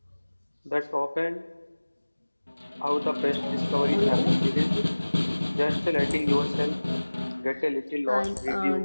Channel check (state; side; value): inverted; both; correlation -1.00